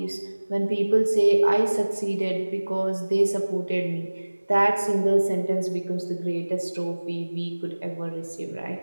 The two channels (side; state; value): both; inverted; correlation -1.00